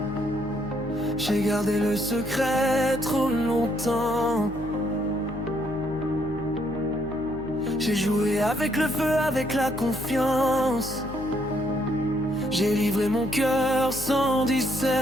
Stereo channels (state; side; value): noise; left; hum, 13 dB below the sound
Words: J'ai gardé le secret trop longtemps. J'ai joué avec le feu, avec la confiance. J'ai livré mon cœur sans